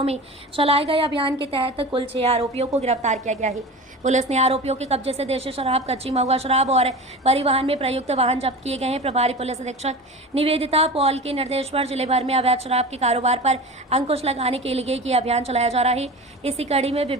में चलाए गए अभियान के तहत कुल 6 आरोपियों को गिरफ्तार किया गया है। पुलिस ने आरोपियों के कब्जे से देशी शराब, कच्ची महुआ शराब और परिवहन में प्रयुक्त वाहन जब्त किए गए हैं। प्रभारी पुलिस अधीक्षक निवेदिता पॉल के निर्देश पर जिले भर में अवैध शराब के कारोबार पर अंकुश लगाने के लिए ये अभियान चलाया जा रहा है। इसी कड़ी में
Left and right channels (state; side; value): normal; both; correlation 0.32